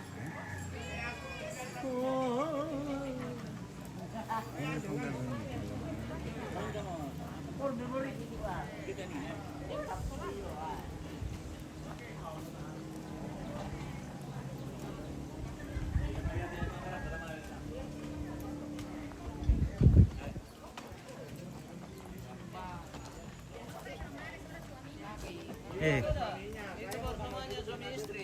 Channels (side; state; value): both; identical; correlation 1.00